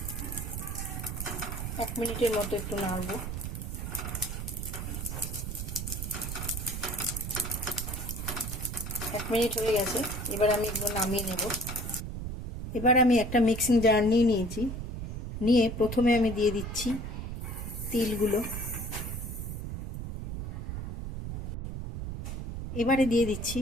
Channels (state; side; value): noise; right; rumble, 5 dB below the sound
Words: 1 মিনিটের মতো একটু নাড়বো। এক মিনিট হয়ে গেছে, এবার আমি এগুলো নামিয়ে নেব। এবার আমি একটা মিক্সিং জার নিয়েছি, নিয়ে প্রথমে আমি দিয়ে দিচ্ছি তিলগুলো। এবারে দিয়ে দিচ্ছি